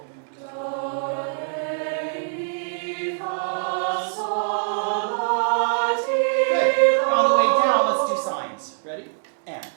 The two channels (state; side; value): silent; left; digital silence